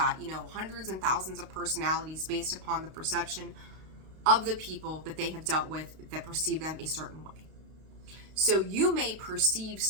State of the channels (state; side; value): late; left; 32 ms